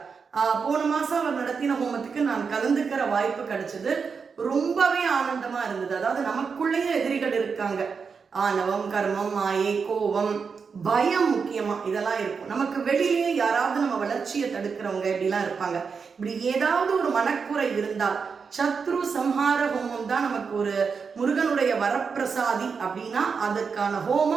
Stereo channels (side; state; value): left; quieter; 5.6 dB